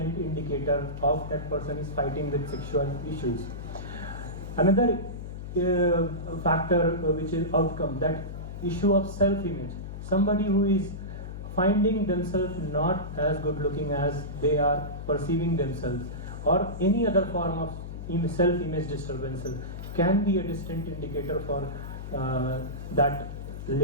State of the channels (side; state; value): left; noise; hum, 9 dB below the sound